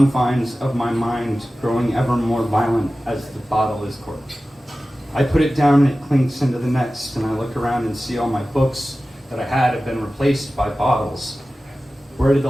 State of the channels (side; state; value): both; normal; correlation 0.95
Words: of my mind, growing ever more violent as the bottle is corked. I put it down and it clinks into the next, and I look around and see all my books that I had have been replaced by bottles. Where did